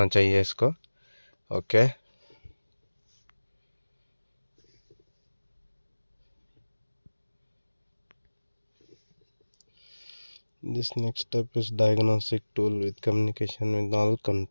चाहिए इसको। Okay, this next step is diagnostic tool with communication with all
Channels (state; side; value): inverted; both; correlation -1.00